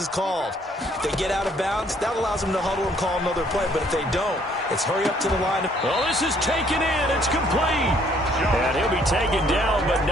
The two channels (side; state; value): both; normal; correlation 0.64